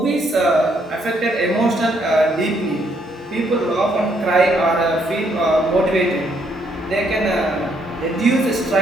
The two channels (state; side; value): normal; both; correlation 0.71